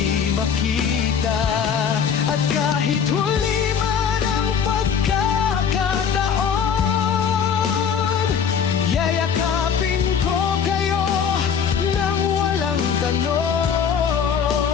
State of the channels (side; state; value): right; quieter; 7.2 dB